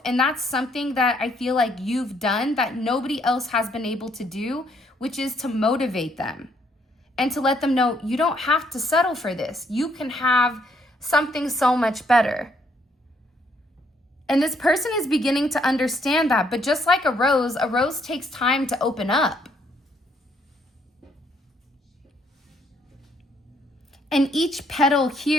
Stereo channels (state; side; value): normal; both; correlation 0.69